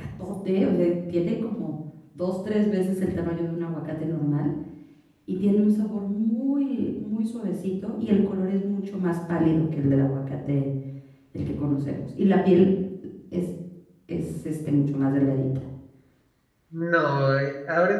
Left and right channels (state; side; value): identical; both; correlation 1.00